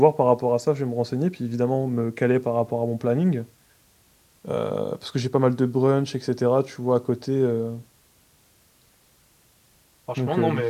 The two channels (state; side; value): identical; both; correlation 1.00